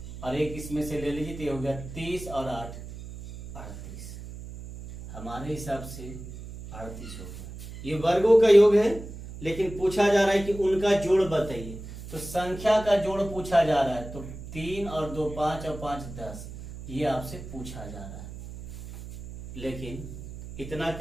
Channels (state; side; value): noise; right; hum, 12 dB below the sound